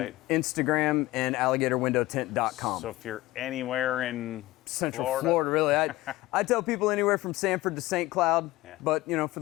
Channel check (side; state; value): right; quieter; 18.5 dB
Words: and Instagram and alligatorwindowtint.com. So if you're anywhere in Central Florida, really. I tell people anywhere from Sanford to St. Cloud, Yeah. but you know, for